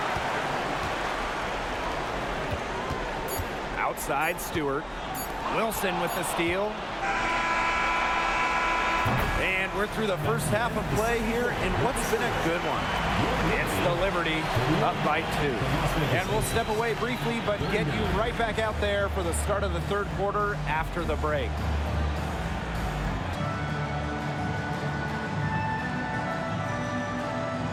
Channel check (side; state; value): both; identical; correlation 1.00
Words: Outside Stewart. Wilson with the steal. And we're through the first half of play here in what's been a good one. It's the Liberty up by 2. And we'll step away briefly, but get you right back out there for the start of the third quarter after the break.